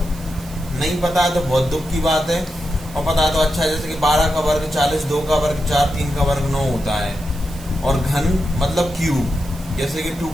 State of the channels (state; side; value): noise; right; hiss, 20 dB below the sound